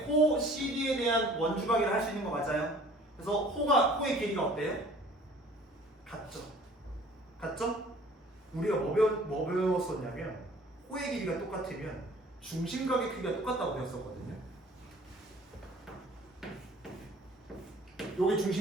호 CD에 대한 원주각이라고 할 수 있는 거 맞아요? 그래서 호의 길이가 어때요? 같죠? 같죠? 우리가 뭐 배웠었냐면 호의 길이가 똑같으면 중심각의 크기가 똑같다고 배웠었거든요. 요게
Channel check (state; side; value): normal; both; correlation 0.51